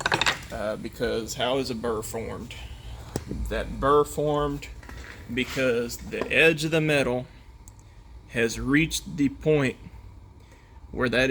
because how is a burr formed? That burr formed because the edge of the metal has reached the point where that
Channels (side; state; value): both; identical; correlation 1.00